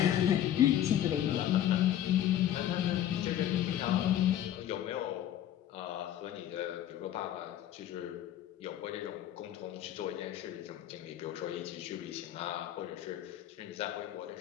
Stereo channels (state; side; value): quieter; right; 11.6 dB